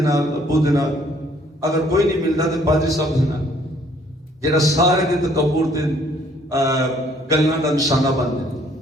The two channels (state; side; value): normal; both; correlation 0.62